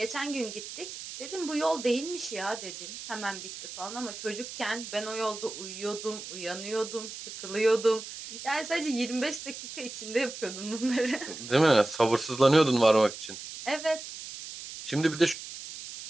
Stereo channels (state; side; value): noise; right; hiss, 11 dB below the sound